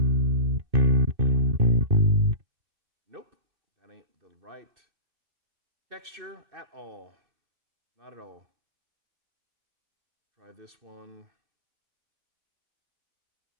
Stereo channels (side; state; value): left; late; 2.6 ms